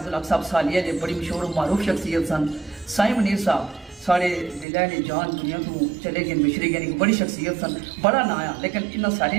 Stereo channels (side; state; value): left; drops out; at 4.7 s